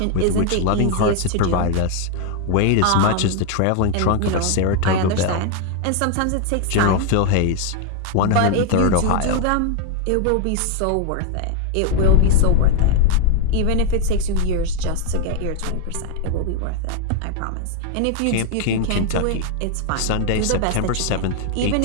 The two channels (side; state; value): both; different; correlation 0.01